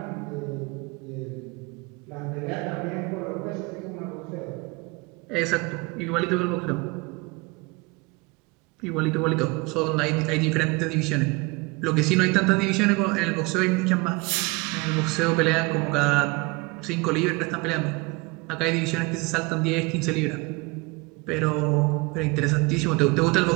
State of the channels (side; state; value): left; quieter; 26.3 dB